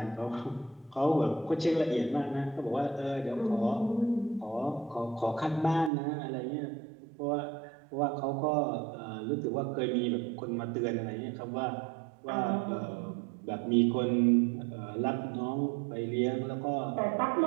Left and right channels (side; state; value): left; drops out; at 5.9 s